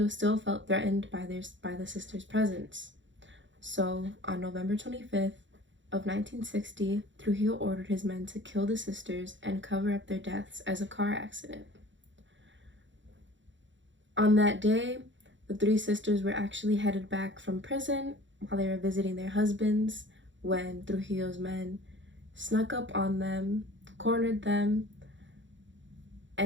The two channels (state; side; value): late; left; 0.54 ms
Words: still felt threatened by the sisters' presence. So, on November 25th of 1960, Trujillo ordered his men to kill the sisters and cover up their deaths as a car accident. On that day, the 3 sisters were actually headed back from prison while they were visiting their husbands when Trujillo's men snuck up on them, cornered them,